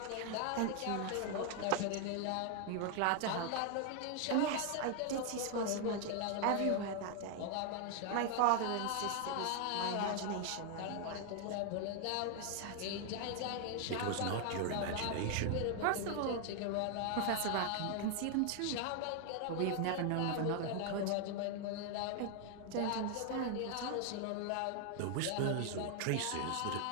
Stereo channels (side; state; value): both; different; correlation 0.00